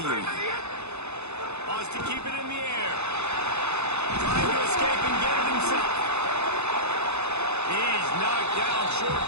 it. Wants to keep it in the air. Trying to escape and get it himself. He's knocked down short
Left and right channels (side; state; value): left; late; 0.81 ms